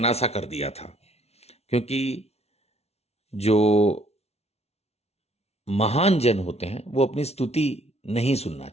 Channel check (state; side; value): late; right; 0.31 ms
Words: सा कर दिया था, क्योंकि जो महान जन होते हैं वो अपनी स्तुति नहीं सुनना